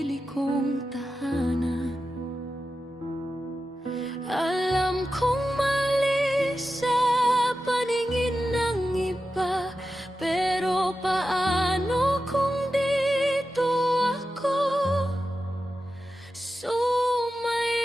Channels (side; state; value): both; normal; correlation 0.92